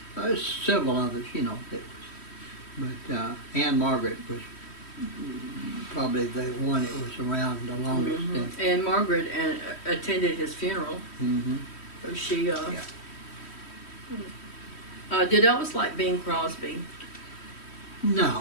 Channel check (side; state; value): right; late; 3.1 ms